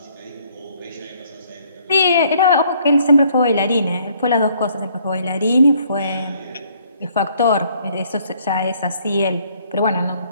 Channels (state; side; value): inverted; both; correlation -0.64